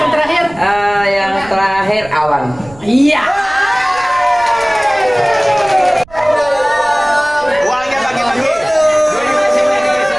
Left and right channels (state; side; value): noise; right; rumble, 22 dB below the sound